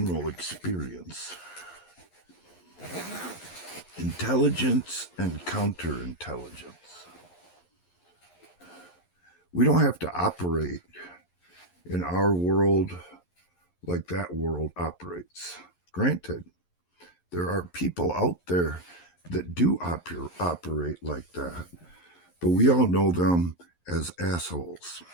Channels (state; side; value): late; right; 11 ms